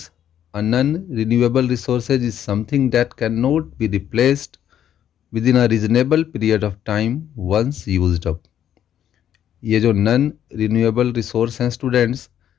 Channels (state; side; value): quieter; right; 10.2 dB